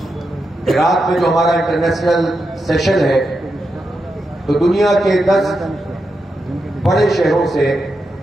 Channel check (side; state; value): both; normal; correlation 0.87